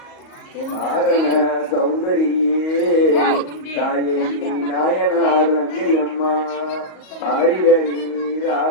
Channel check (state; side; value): late; right; 38 ms